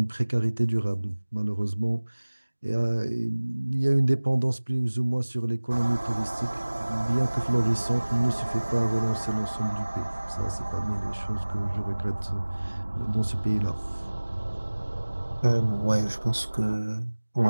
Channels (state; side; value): inverted; both; correlation -1.00